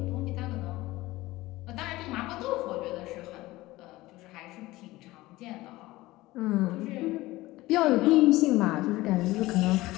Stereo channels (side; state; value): right; quieter; 18.6 dB